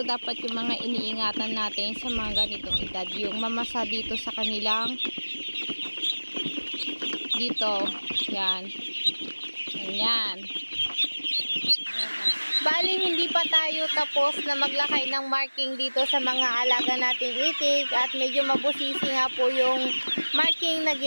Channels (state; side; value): inverted; both; correlation -1.00